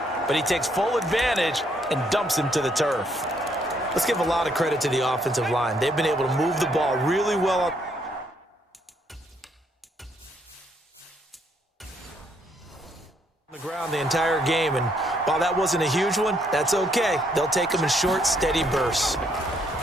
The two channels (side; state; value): both; normal; correlation 0.71